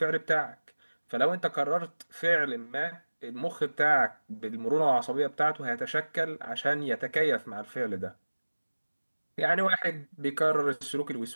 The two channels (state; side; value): inverted; both; correlation -1.00